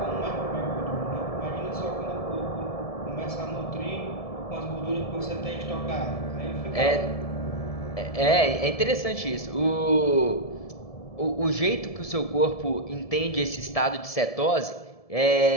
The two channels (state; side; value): late; right; 1.7 ms